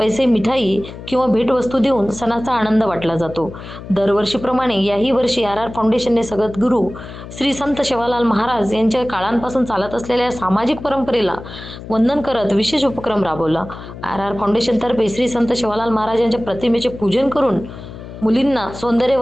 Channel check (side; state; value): left; noise; hum, 13 dB below the sound